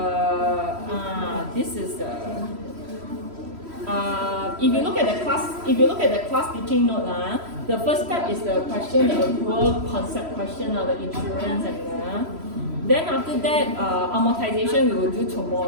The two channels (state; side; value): late; left; 3.1 ms